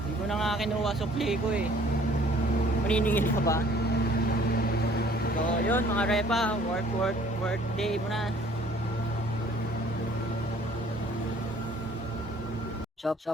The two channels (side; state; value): both; normal; correlation 0.56